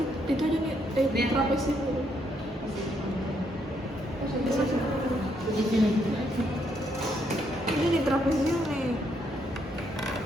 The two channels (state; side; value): normal; both; correlation 0.74